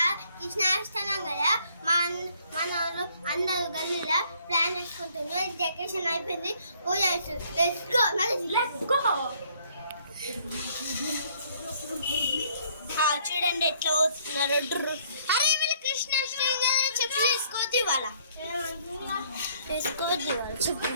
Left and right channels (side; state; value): both; inverted; correlation -0.63